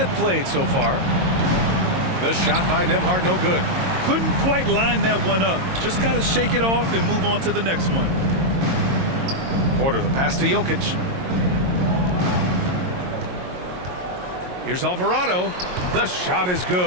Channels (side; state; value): left; late; 22 ms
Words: played so far. The shot by Nembhard, no good. Couldn't quite line that one up. Just got to shake it off and move on to the next one. Porter, the pass to Jokic. Here's Alvarado. The shot is